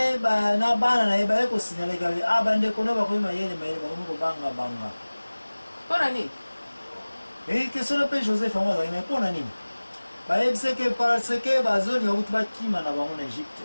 ba na bana na ba ko signale gabi abande kono ba ko mayele mayele ba ko banga banga. Pona ni? Question na pe Joseph amo za ina pona ni? Ba yebise que parce que bazoni ba kutuba kima na bango na Egypte.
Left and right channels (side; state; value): both; inverted; correlation -1.00